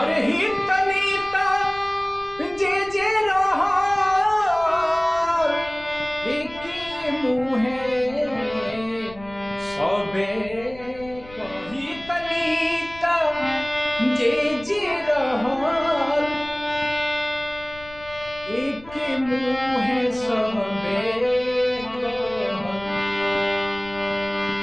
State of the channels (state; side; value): noise; left; rumble, 20 dB below the sound